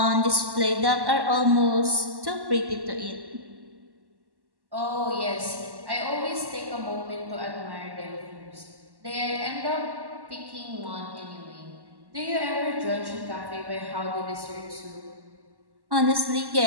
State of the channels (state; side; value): late; left; 1.1 ms